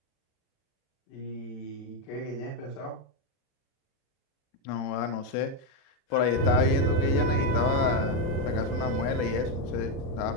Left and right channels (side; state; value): right; late; 36 ms